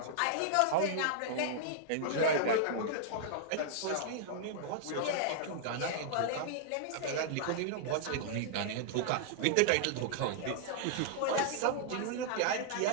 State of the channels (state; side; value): different; both; correlation -0.01